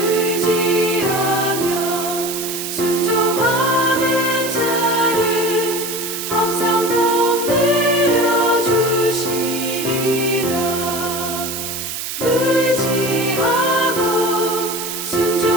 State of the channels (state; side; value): noise; right; hiss, 6 dB below the sound